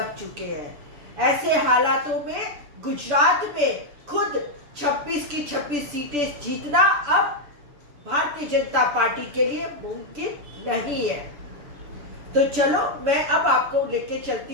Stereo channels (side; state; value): left; late; 6.9 ms